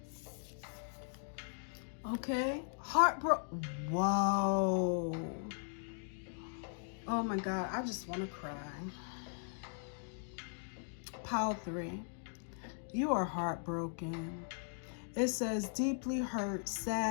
Okay, whoa. Oh my God, I just want to cry. Pile 3, you are heartbroken. It says deeply hurt,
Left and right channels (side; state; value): right; silent; digital silence